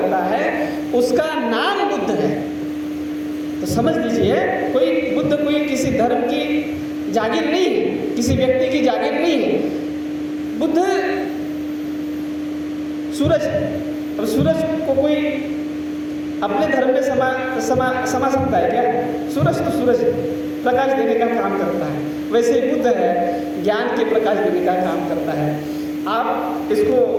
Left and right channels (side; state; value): both; identical; correlation 1.00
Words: है, उसका नाम बुद्ध है। तो समझ लीजिए, बुद्ध कोई किसी धर्म की जागीर नहीं है, किसी व्यक्ति की जागीर नहीं है। बुद्ध सूरज है। अब सूरज को कोई अपने धर्म में समा सकता है क्या? सूरज तो सूरज प्रकाश देने का काम करता है, वैसे बुद्ध है ज्ञान के प्रकाश देने का काम करता है। आप इसको